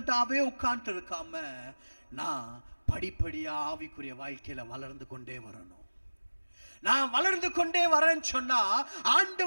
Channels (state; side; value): inverted; both; correlation -1.00